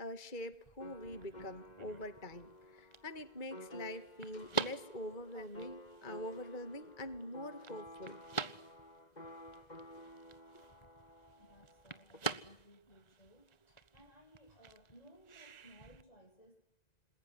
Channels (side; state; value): right; late; 1.9 ms